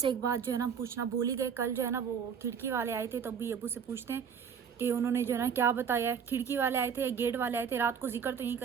एक बात जो है ना पूछना भूल ही गए। कल जो है ना वो खिड़की वाले आए थे, तब भी अबू से पूछते हैं कि उन्होंने जो है ना क्या बताया। खिड़की वाले आए थे, गेट वाले आए थे। रात को जिक्र तो नहीं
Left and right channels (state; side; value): quieter; left; 7.1 dB